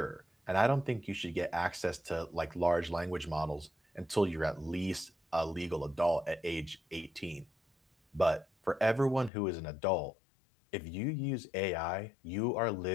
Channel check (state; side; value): drops out; right; at 9.3 s